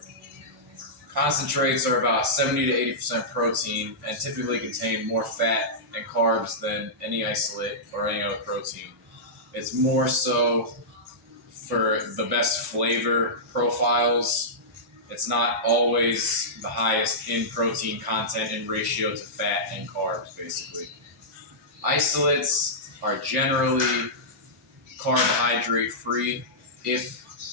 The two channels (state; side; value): normal; both; correlation -0.14